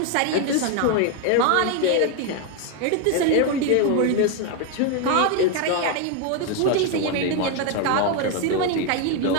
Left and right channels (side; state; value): both; different; correlation 0.01